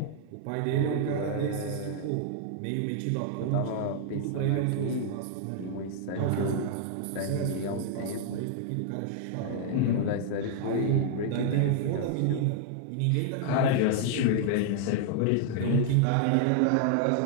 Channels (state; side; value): different; both; correlation -0.01